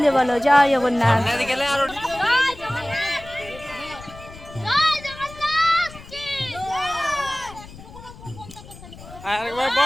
বলো জয় জগন্নাথ। আরেকবার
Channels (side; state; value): left; noise; rumble, 17 dB below the sound